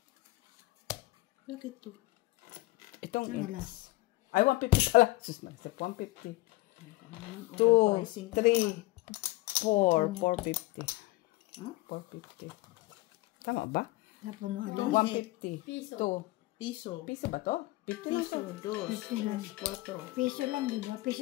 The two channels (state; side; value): quieter; right; 20.2 dB